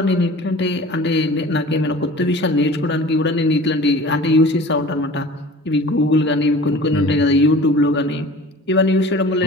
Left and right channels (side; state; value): both; normal; correlation 0.42